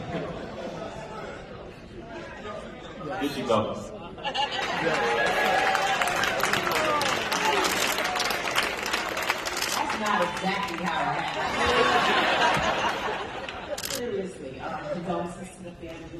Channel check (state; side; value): identical; both; correlation 1.00